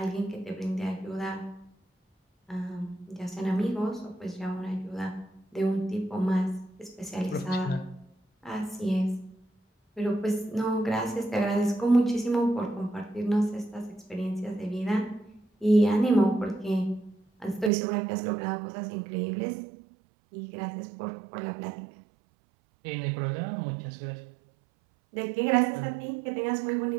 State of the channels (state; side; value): drops out; left; at 17.7 s